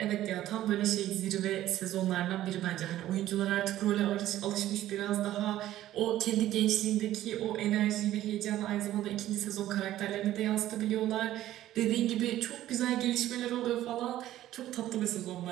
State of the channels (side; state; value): left; quieter; 13.7 dB